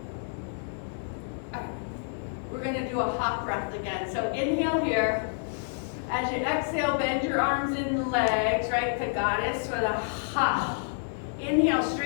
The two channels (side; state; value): right; silent; 57 dB below the other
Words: We're going to do a hop breath again. So inhale here. As you exhale, bend your arms and legs, right to goddess with a ha. Inhale,